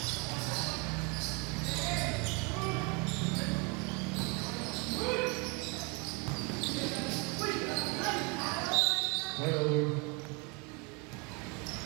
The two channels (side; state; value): left; quieter; 31.4 dB